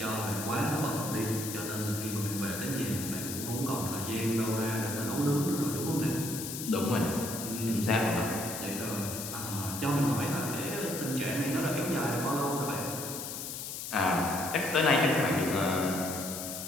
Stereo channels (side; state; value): left; noise; hiss, 6 dB below the sound